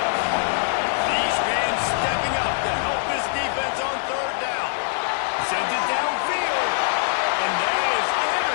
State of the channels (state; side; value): silent; right; digital silence